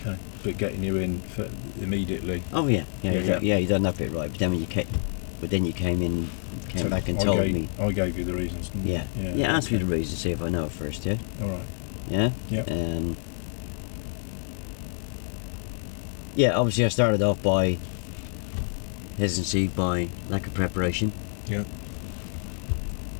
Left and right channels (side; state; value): right; silent; digital silence